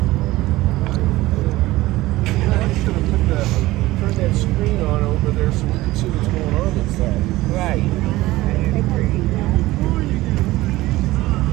Turn that screen on over there so we can see what's going on inside. Right.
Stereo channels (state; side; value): quieter; left; 18.0 dB